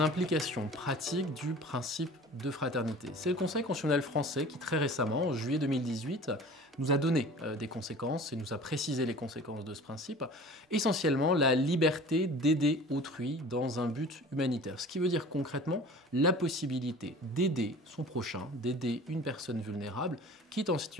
pratiques du principe de fraternité? C'est le Conseil constitutionnel français qui, très récemment, en juillet 2018, nous a donné des conséquences et nous a précisé les conséquences de ce principe. Essentiellement, la liberté d'aider autrui dans un but humanitaire. Ce qui veut dire concrètement la possibilité d'aider son prochain, d'aider une personne vulnérable qui est en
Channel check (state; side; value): normal; both; correlation 0.42